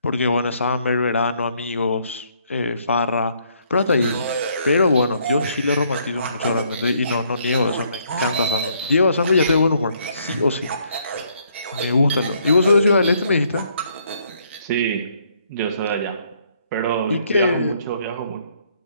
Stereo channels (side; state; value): both; inverted; correlation -0.68